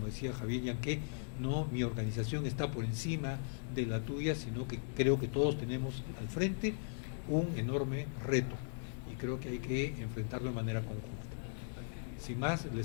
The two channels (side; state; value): right; silent; digital silence